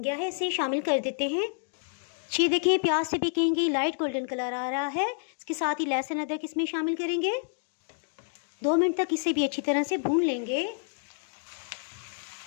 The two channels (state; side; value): silent; right; digital silence